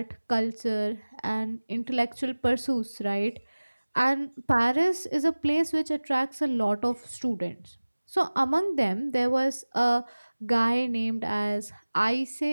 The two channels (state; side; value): inverted; both; correlation -1.00